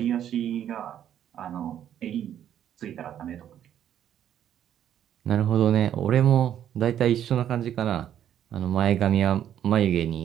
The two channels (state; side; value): quieter; left; 10.3 dB